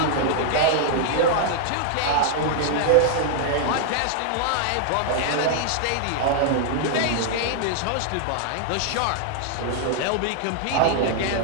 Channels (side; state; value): both; different; correlation 0.00